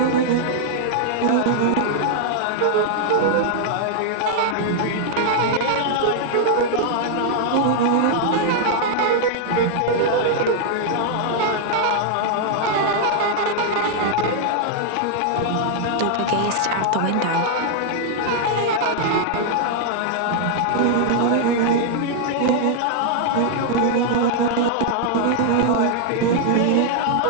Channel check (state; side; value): different; both; correlation 0.00